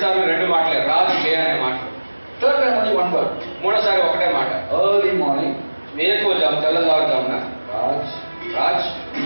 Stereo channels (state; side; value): inverted; both; correlation -1.00